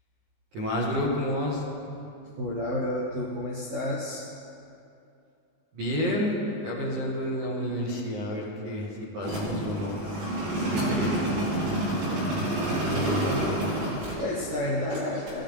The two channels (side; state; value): left; late; 20 ms